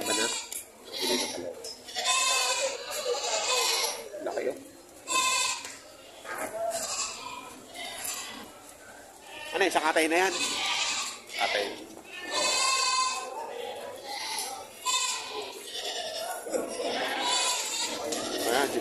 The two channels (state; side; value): identical; both; correlation 1.00